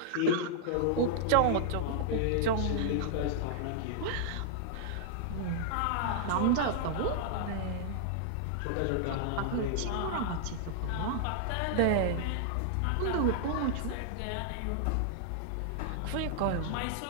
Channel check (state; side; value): different; both; correlation -0.01